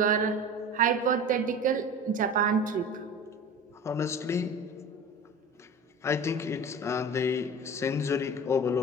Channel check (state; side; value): normal; both; correlation 0.35